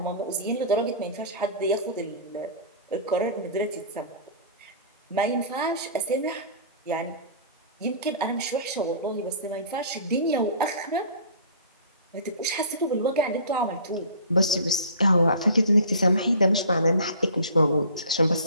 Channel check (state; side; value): inverted; both; correlation -0.42